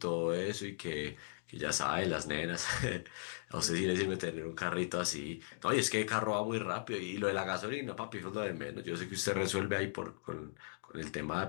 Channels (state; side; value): silent; right; digital silence